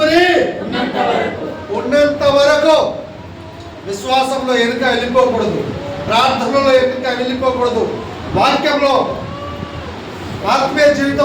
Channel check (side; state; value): both; identical; correlation 1.00